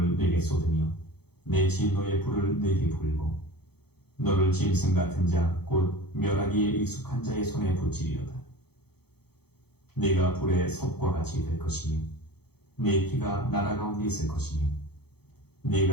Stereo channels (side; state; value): right; late; 0.96 ms